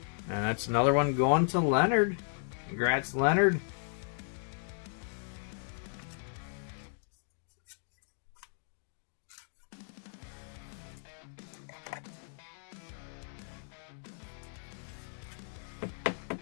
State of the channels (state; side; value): silent; right; digital silence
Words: And that's another one going to Leonard. Congrats, Leonard.